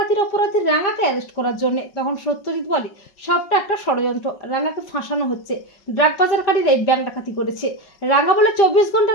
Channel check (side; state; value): right; late; 5.4 ms